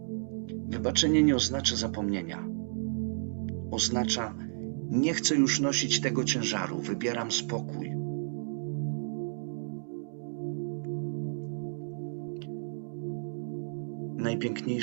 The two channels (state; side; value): silent; left; digital silence